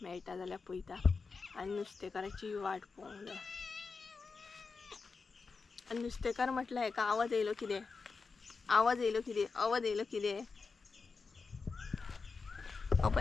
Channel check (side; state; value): right; quieter; 4.6 dB